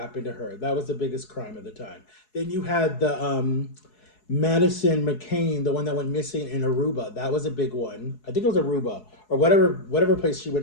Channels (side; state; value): right; late; 4.7 ms